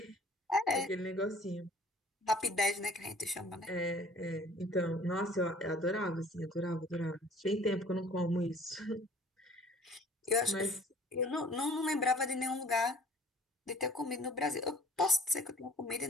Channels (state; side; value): normal; both; correlation 0.51